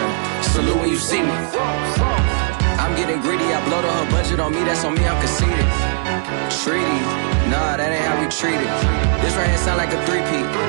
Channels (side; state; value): left; silent; 63 dB below the other